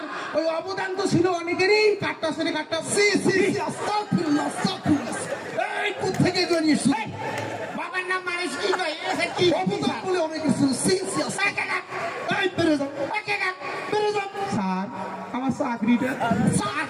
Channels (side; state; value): both; identical; correlation 1.00